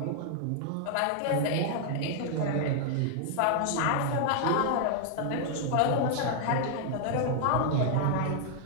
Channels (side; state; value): both; different; correlation -0.01